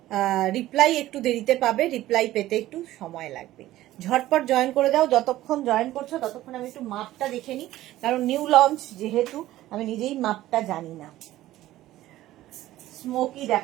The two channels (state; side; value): quieter; left; 15.1 dB